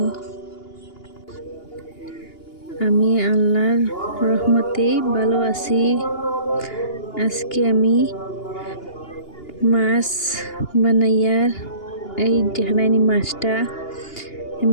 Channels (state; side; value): late; right; 2.8 ms